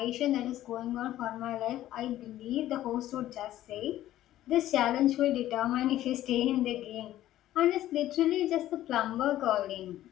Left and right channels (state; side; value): quieter; right; 13.7 dB